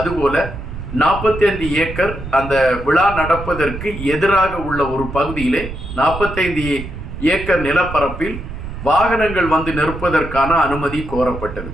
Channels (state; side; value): noise; right; rumble, 9 dB below the sound